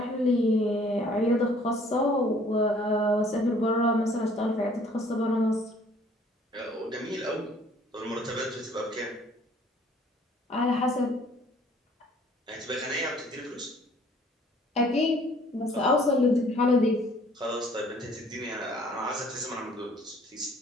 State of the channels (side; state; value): both; normal; correlation 0.57